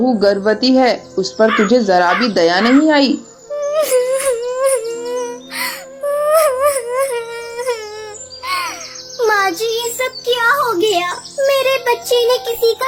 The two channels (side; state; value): both; identical; correlation 1.00